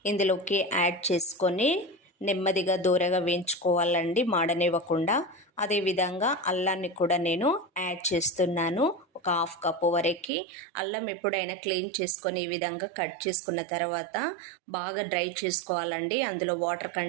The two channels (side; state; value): left; drops out; at 10.2 s